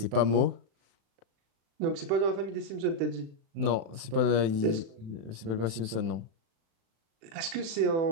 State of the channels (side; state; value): left; late; 36 ms